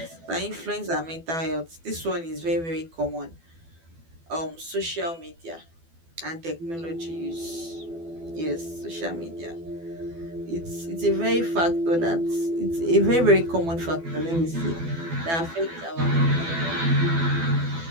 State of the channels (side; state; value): left; late; 12 ms